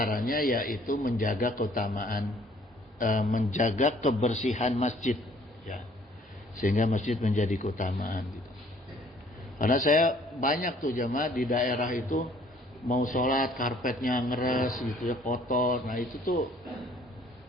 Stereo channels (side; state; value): both; normal; correlation 0.59